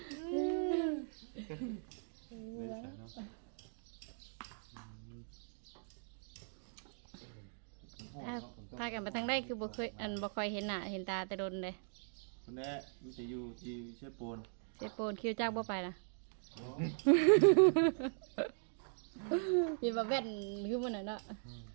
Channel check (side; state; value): left; silent; digital silence